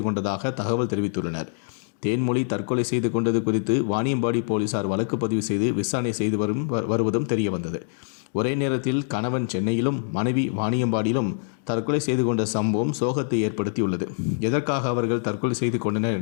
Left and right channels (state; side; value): silent; right; digital silence